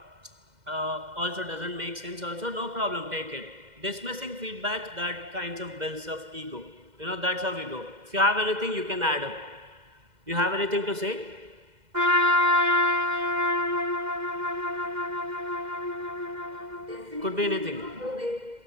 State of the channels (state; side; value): late; left; 2.0 ms